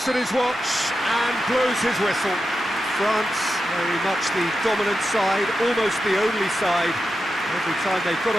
at his watch and blows his whistle. France, very much the dominant side, almost the only side. Every time they got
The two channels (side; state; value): both; normal; correlation 0.90